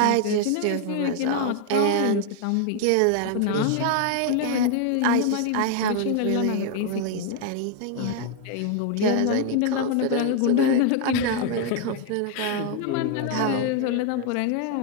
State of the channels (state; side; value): different; both; correlation 0.00